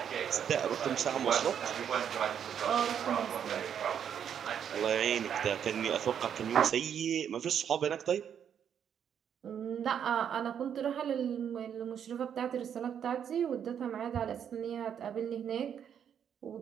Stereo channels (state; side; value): quieter; left; 8.5 dB